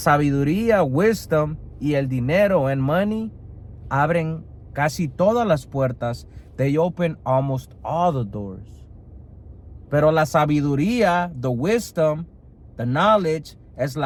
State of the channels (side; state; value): both; identical; correlation 1.00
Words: wisdom y el dinero and money abren casi todas las puertas. They open almost all the doors. Pero la sabiduría, the wisdom, the knowledge, es